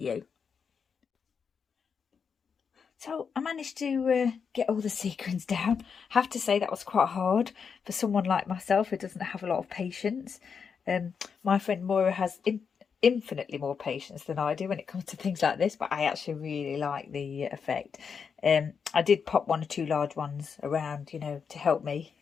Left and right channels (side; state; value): right; quieter; 6.3 dB